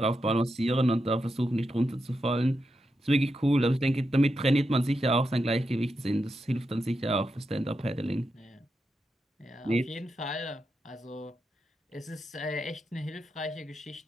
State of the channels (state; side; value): normal; both; correlation 0.86